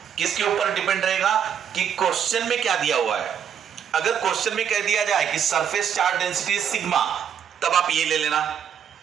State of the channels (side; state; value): left; quieter; 8.3 dB